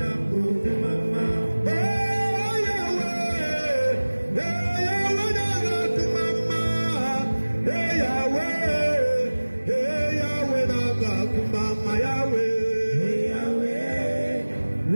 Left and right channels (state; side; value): inverted; both; correlation -1.00